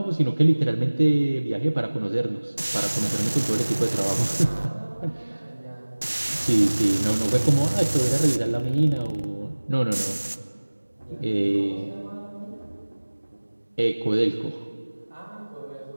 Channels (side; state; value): both; inverted; correlation -1.00